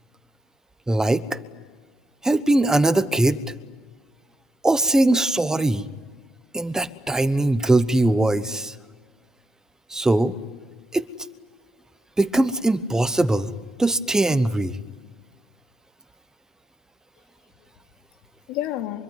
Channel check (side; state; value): both; normal; correlation 0.85